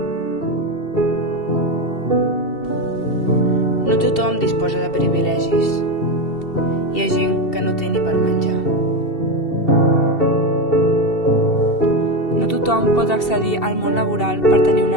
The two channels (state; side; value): late; right; 2.7 ms